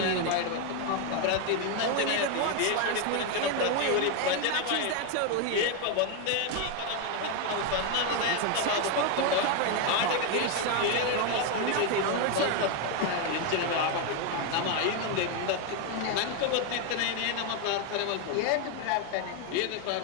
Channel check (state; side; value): different; both; correlation 0.01